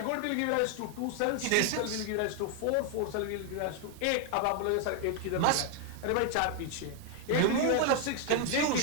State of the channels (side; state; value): both; different; correlation 0.00